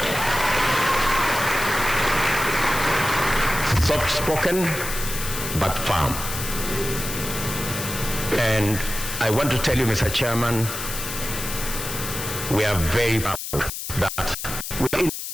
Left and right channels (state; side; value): noise; left; hiss, 6 dB below the sound